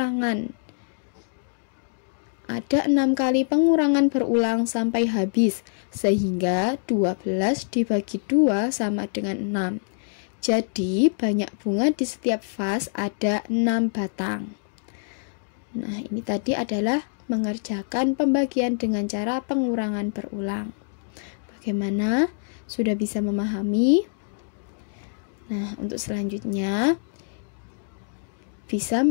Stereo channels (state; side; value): silent; right; digital silence